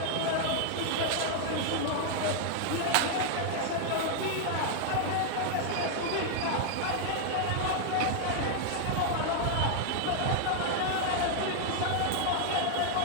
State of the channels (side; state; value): both; different; correlation 0.00